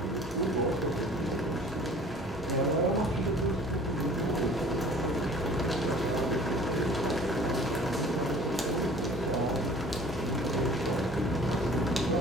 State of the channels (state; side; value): normal; both; correlation 0.48